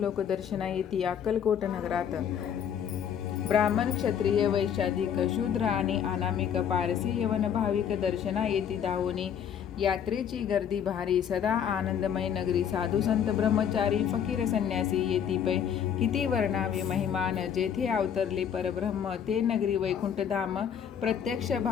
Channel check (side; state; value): right; quieter; 8.4 dB